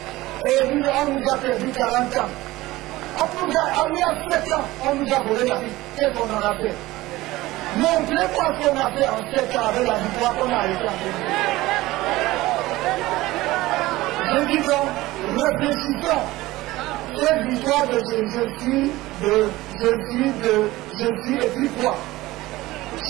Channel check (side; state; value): left; quieter; 18.3 dB